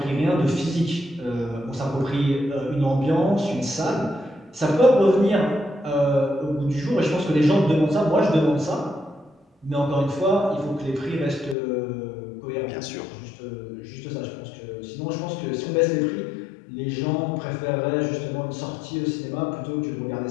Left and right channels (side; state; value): right; drops out; at 11.6 s